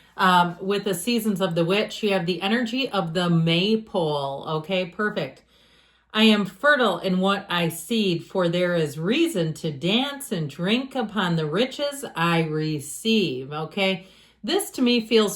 With the Seasons of the Witch, you have the energy of the maypole. Okay, perfect. I am fertile in what I seed, for there is reason to dance and drink upon the riches I receive. Okay, this to me feels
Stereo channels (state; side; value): identical; both; correlation 1.00